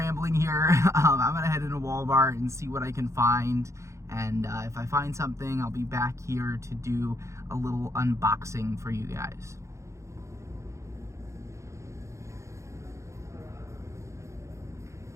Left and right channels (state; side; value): late; left; 0.14 ms